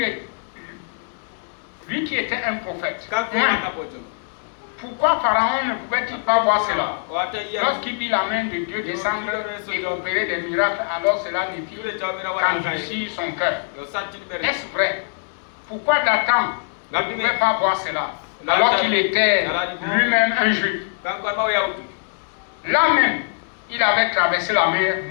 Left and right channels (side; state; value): right; silent; 62 dB below the other